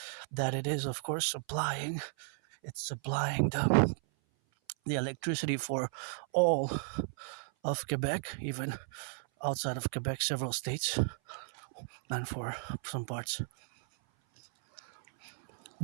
that it is, of course, supplying the electricity for all of Quebec, even outside of Quebec, several states, and for some parts.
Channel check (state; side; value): silent; left; 55 dB below the other